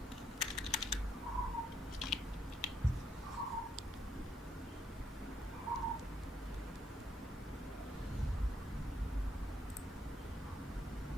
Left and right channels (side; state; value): both; normal; correlation 0.73